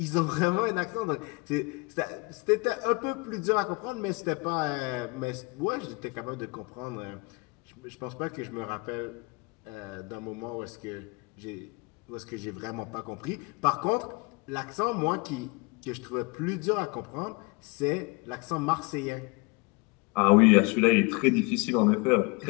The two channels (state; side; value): quieter; right; 28.5 dB